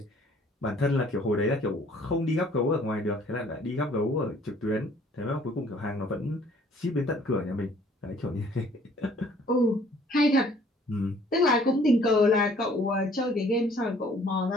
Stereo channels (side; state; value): both; normal; correlation 0.57